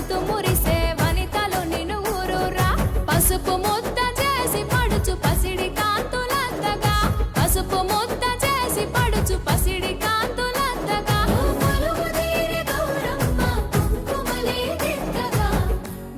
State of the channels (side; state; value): both; identical; correlation 1.00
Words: మురిసే వనితలు నిన్ను ఊరురా పసుపు ముద్ద చేసి పడుచు పసిడి కాంతులంతగా పసుపు ముద్ద చేసి పడుచు పసిడి కాంతులంతగా